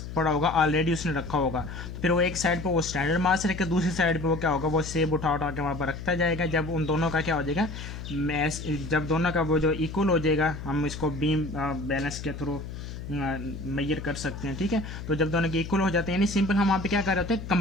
पड़ा होगा, ऑलरेडी उसने रखा होगा। तो फिर वो एक साइड पे वो स्टैंडर्ड मास रखे, दूसरी साइड पे वो क्या होगा, वो सेब उठा उठा के वहाँ पर रखता जाएगा। जब उन दोनों का क्या हो जाएगा, मैस, जब दोनों का वो जो इक्वल हो जाएगा, हम इसको बीम बैलेंस के थ्रू मेजर कर सकते हैं, ठीक है। तो जब दोनों के इक्वल हो जाते हैं, यानी सिंपल हम वहाँ पे क्या कर रहे होते हैं,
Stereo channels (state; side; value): noise; left; hum, 9 dB below the sound